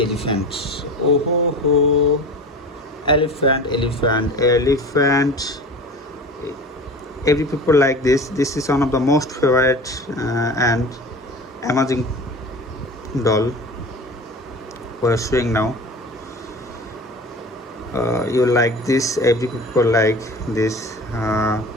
elephant. Oh ho ho, elephant. every people like this. This is one of the most favorite and amazing doll we're showing now. You like this, every people like this.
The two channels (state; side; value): normal; both; correlation 0.36